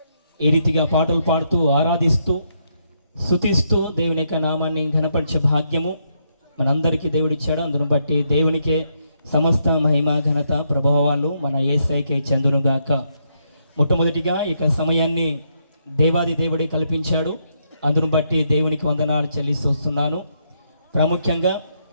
ఈ రీతిగా పాటలు పాడుతూ ఆరాధిస్తూ స్తుతిస్తూ దేవుని యొక్క నామాన్ని ఘనపరిచే భాగ్యము మనందరికీ దేవుడిచ్చాడు. అందును బట్టి దేవునికే సమస్త మహిమ ఘనత ప్రభావాలు మన యేసయ్యకే చెందునుగాక. మొట్టమొదటిగా ఇక సమయాన్ని దేవాది దేవుడే కల్పించాడు. అందును బట్టి దేవునికి వందనాలు చెల్లిస్తూ వస్తున్నాను. ప్రాముఖ్యంగా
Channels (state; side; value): inverted; both; correlation -0.77